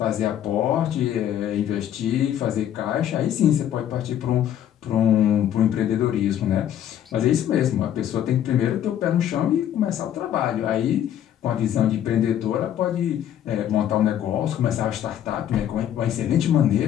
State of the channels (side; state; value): right; quieter; 10.6 dB